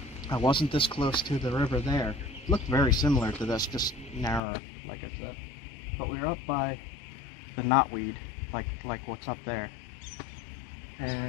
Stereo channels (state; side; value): drops out; right; at 4.4 s